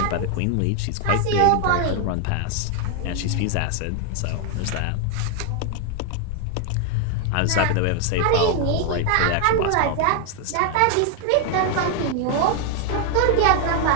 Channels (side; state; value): both; different; correlation 0.01